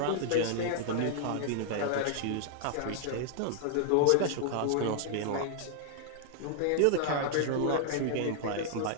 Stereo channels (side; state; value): both; different; correlation -0.01